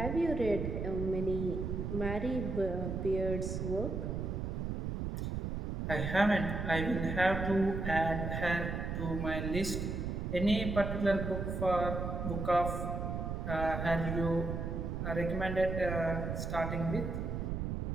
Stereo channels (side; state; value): right; noise; rumble, 2 dB below the sound